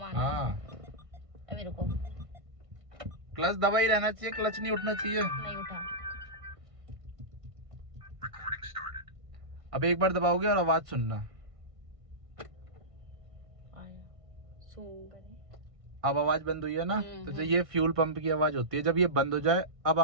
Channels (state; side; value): late; left; 1.5 ms